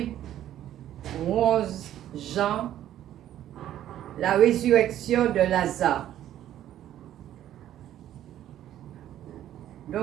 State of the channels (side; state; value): left; quieter; 12.0 dB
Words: 11 Jean, la résurrection de Lazare.